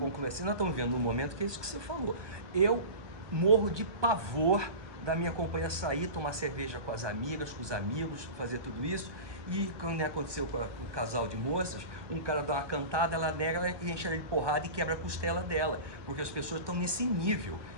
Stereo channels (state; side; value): late; left; 1.2 ms